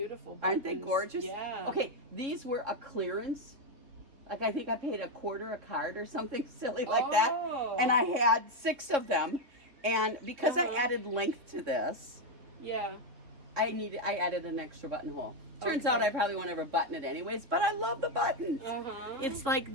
buttons. Aren't they gorgeous? Yeah. Okay, these were a clearance. Like I think I paid $0.25 a card or something silly like that. And I had 6 of them. And because I added length to this, I added an extra buttonhole. Turns out I probably won't ever button it anyways, but I love the buttons. It's like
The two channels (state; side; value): late; left; 3.6 ms